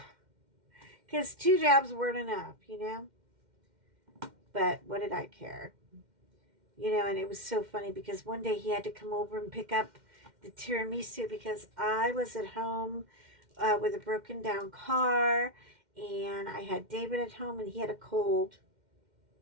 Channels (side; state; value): left; late; 2.1 ms